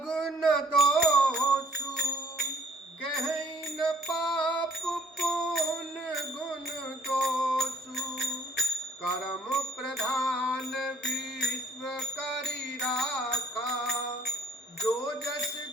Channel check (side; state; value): both; normal; correlation 0.59